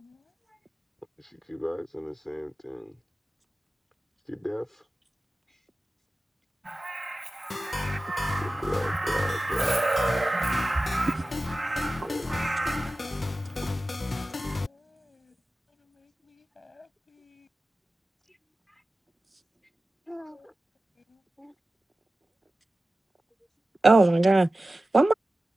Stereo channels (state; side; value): normal; both; correlation 0.95